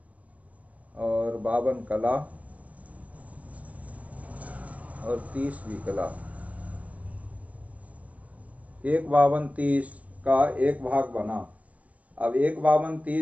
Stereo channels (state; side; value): late; left; 0.067 ms